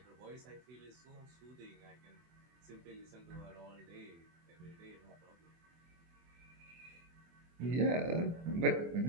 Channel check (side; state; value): left; late; 24 ms